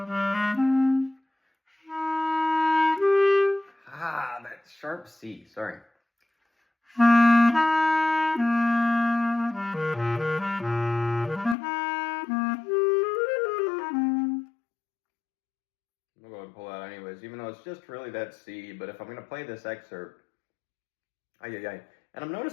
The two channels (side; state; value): right; drops out; at 11.6 s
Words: That sharp C, sorry. I'm going to pull out anyways, even though it's just really that C, but if I'm going to play this excerpt, and I'm